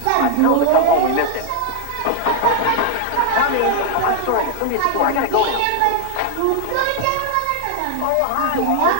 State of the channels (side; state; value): both; different; correlation 0.00